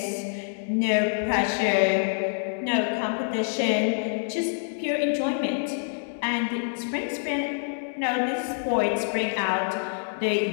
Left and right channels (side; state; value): right; silent; digital silence